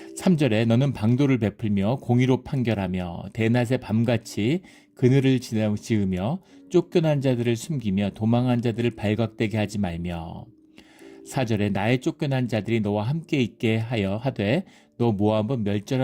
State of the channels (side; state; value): both; identical; correlation 1.00